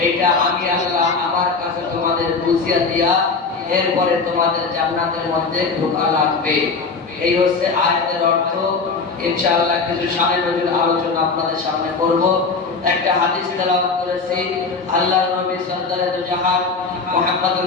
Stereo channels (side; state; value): right; quieter; 4.4 dB